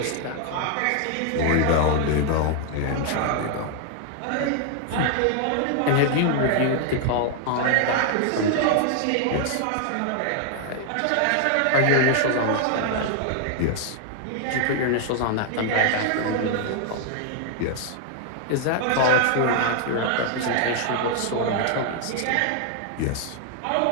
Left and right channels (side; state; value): both; different; correlation 0.00